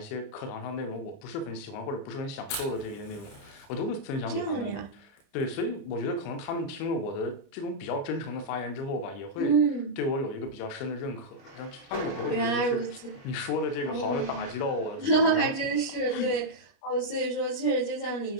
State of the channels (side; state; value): right; late; 29 ms